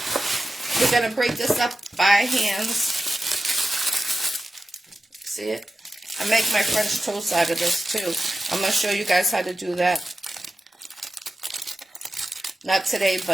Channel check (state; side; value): normal; both; correlation 0.92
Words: We're going to break this up by hands. See it? I make my French toast out of this too. I'm going to show you guys how to do that. Not today,